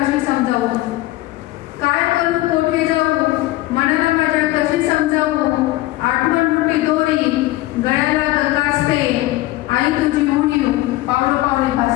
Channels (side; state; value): right; quieter; 17.7 dB